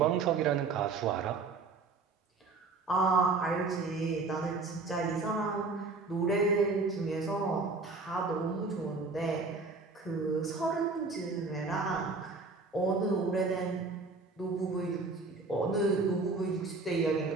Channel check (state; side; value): quieter; left; 4.0 dB